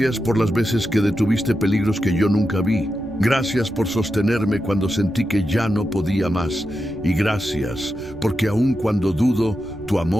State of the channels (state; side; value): noise; right; rumble, 18 dB below the sound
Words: por las veces que detuviste peligros que yo nunca vi. Gracias por sostenerme cuando sentí que ya no podía más. Y gracias porque aun cuando dudo, tu